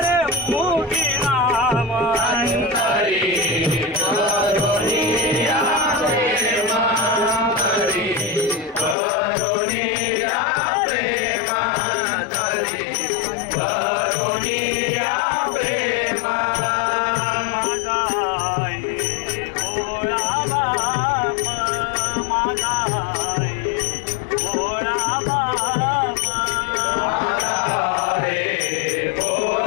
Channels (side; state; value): right; drops out; at 9.0 s